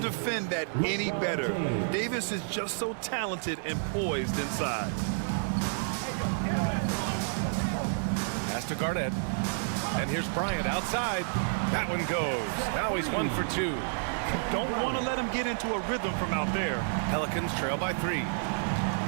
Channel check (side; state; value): left; silent; digital silence